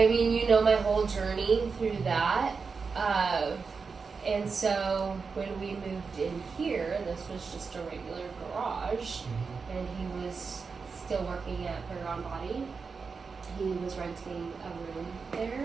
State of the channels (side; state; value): left; quieter; 5.0 dB